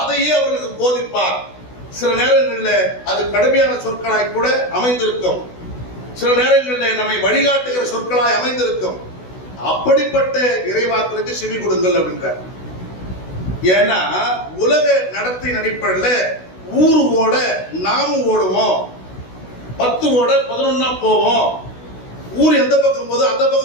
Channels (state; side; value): late; right; 16 ms